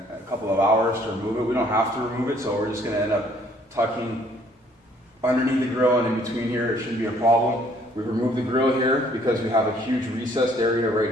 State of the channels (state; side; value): normal; both; correlation 0.62